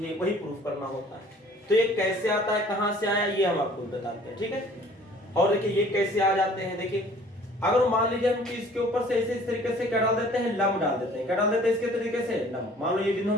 ये वही प्रूफ करना होता है। तो ये कैसे आता है कहां से आया ये हम आपको बताते हैं, ठीक है। और देखिए ये कैसे आ जाते हैं, देखिए अगर मान लीजिए हम इसके ऊपर से ऐसे इस तरीके से क्या डाल देते हैं लम डाल देते हैं, क्या डाल देते हैं इसके तरीके से लम। मान लो ये बिंदु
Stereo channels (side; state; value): both; normal; correlation 0.53